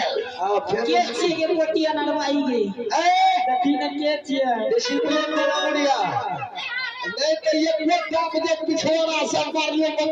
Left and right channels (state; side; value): identical; both; correlation 1.00